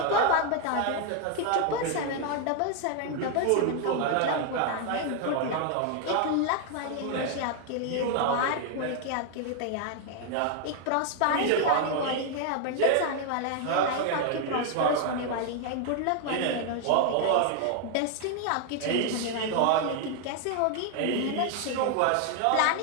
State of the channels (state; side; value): different; both; correlation 0.00